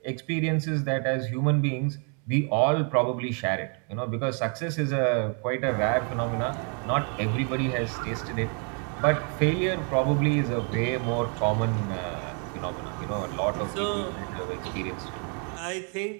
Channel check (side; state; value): left; quieter; 39.6 dB